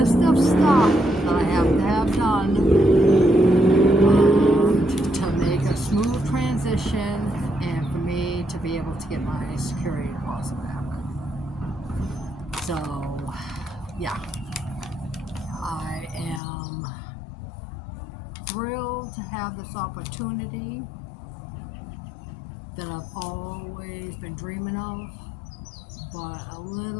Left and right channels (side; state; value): right; drops out; at 16.4 s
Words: of stuff that I have done to make a smooth transition and for me to be able to get my security deposit back. So yeah, I am thrilled to have this opportunity that I've always been dreaming of, but a